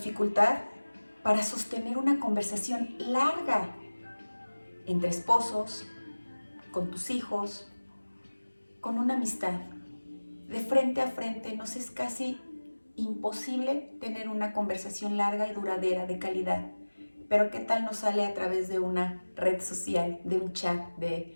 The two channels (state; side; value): inverted; both; correlation -1.00